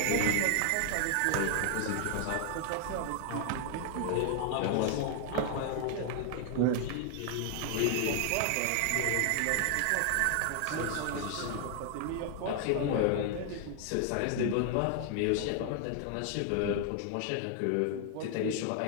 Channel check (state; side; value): different; both; correlation 0.00